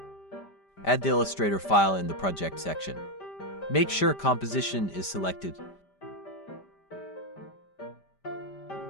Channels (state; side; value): late; right; 5.1 ms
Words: Add the Illustrator file in the project section. Make sure composition is selected.